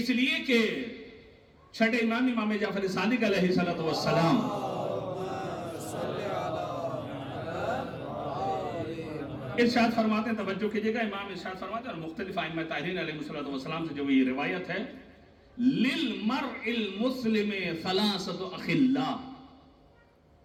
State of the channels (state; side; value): identical; both; correlation 1.00